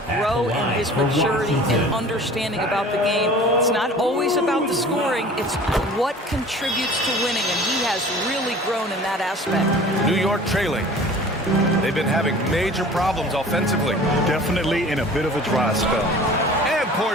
grow in his maturity and understanding about the game. It's not always about the scoring. It's what contributes to winning, and he has really grown in that aspect. New York trailing. They've been having major problems offensively. Definitely in a bit of a dry spell. And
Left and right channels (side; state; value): both; normal; correlation 0.44